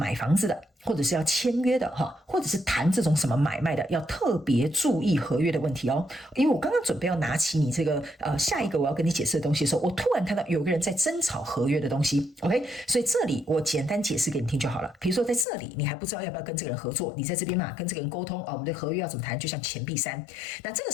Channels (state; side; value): drops out; right; at 15.5 s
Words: 房子的，或者是要签约的哈，或者是谈这种什么买卖的，要特别注意合约的问题哦。因为我刚刚准备要拿起你这个下一个我要跟你解释的东西的时候，我突然看到有个人在争吵合约的东西。OK， 所以这里我简单解释给你听就好了。比如说在这里你还不知道要不要跟这个人合作，你在这边嘛跟这个人沟通我们的合约要怎么谈，就像钱币3。那这个